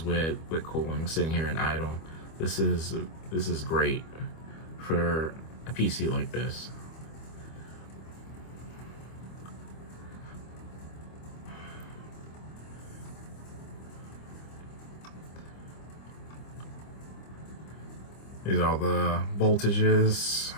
with cooling sitting here in idle. This is great for a PC like this. These are all the voltages.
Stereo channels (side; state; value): right; late; 25 ms